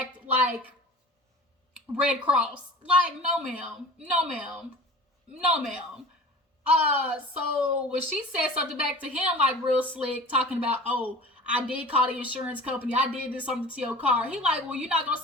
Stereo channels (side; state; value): both; normal; correlation 0.39